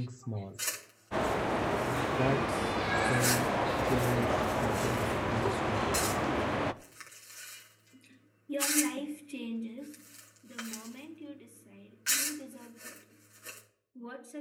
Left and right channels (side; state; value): both; identical; correlation 1.00